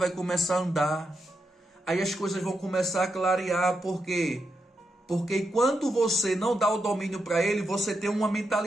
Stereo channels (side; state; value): both; normal; correlation 0.84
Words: começar a andar. Aí as coisas vão começar a clarear. Por quê? Porque enquanto você não dá o domínio para ele, você tem uma